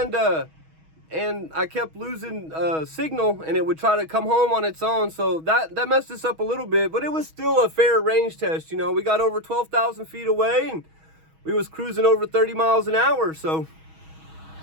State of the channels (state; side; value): late; left; 6.3 ms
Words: I kept losing signal, and it would try to come home on its own, so that messed us up a little bit, but it was still a fair range test. You know, we got over 12,000 feet away, and we was cruising over 30 miles an hour, so